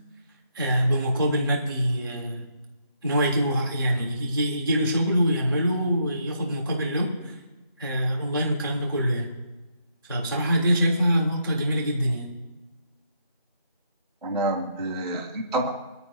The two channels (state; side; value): inverted; both; correlation -0.74